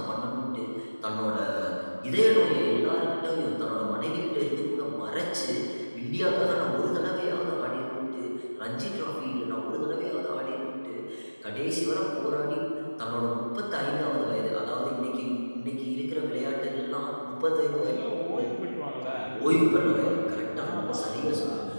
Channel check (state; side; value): inverted; both; correlation -1.00